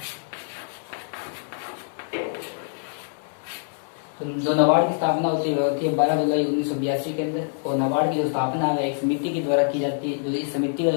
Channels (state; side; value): silent; right; digital silence